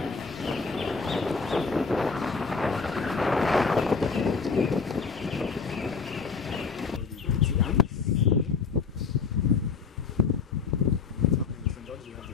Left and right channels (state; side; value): quieter; right; 5.2 dB